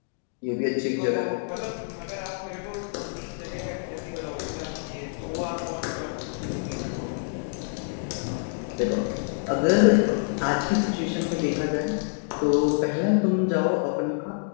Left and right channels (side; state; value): right; silent; digital silence